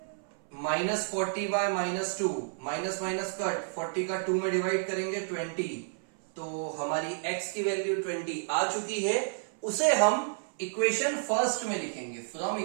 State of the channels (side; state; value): left; silent; 57 dB below the other